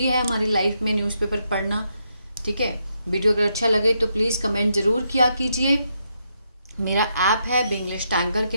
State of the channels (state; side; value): inverted; both; correlation -0.80